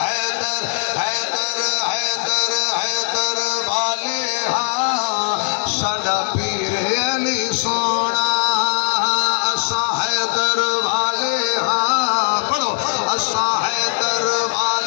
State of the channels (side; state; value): right; silent; digital silence